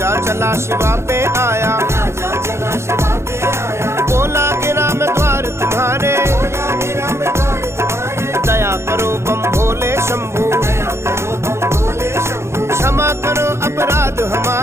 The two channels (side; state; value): left; late; 0.13 ms